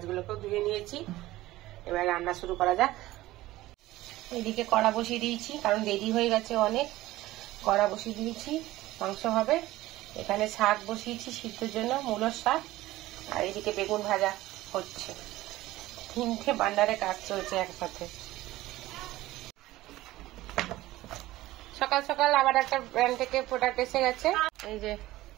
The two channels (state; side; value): quieter; left; 16.9 dB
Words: ধুয়ে নিয়েছি। এবার রান্না শুরু করা যাক। এদিকে কড়া বসিয়ে দিয়েছি, কারণ দেরি হয়ে গেছে অনেক। কড়া বসিয়ে দিয়েছি, মাংস হবে। এখানে শাক বসিয়েছি সিদ্ধর জন্য, মূলোর শাক। আর এদিকে বেগুন ভাজা হচ্ছে। 3টে বান্ডারে কাজ চলছে একসাথে। সকাল সকাল আবার একটা ব্র্যান্ড থেকে প্রোডাক্ট এসে গেছে। এই যে